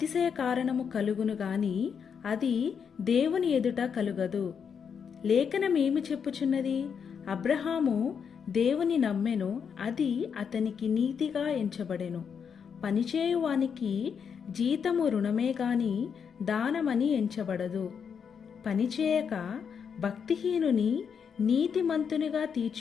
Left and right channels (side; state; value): right; quieter; 6.9 dB